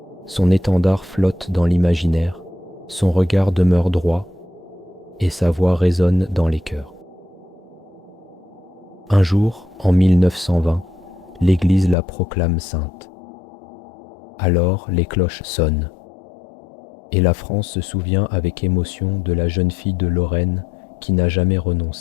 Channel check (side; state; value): right; drops out; at 12.0 s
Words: Son étendard flotte dans l'imaginaire, son regard demeure droit, et sa voix résonne dans les cœurs. Un jour, en 1920, l'Église la proclame sainte. Alors les cloches sonnent, et la France se souvient avec émotion de la jeune fille de Lorraine qui n'a jamais